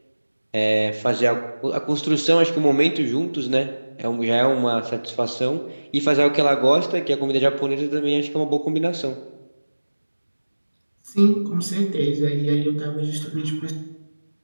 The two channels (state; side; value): inverted; both; correlation -1.00